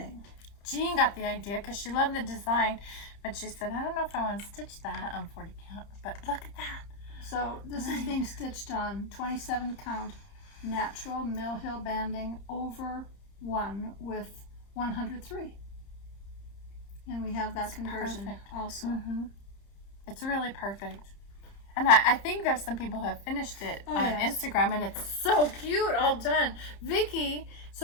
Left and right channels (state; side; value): late; right; 30 ms